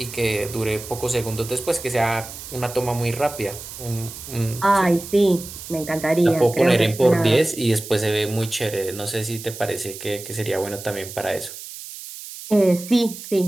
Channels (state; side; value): noise; right; hiss, 12 dB below the sound